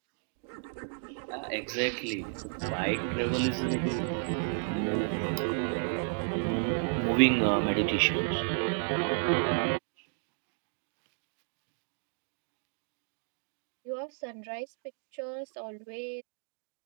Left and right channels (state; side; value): silent; left; 56 dB below the other